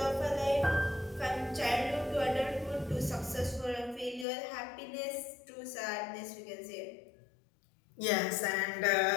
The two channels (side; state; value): right; drops out; at 4.2 s